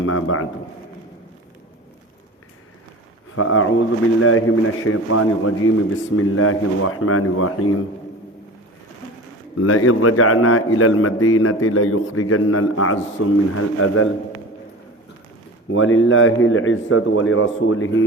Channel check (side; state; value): both; normal; correlation 0.35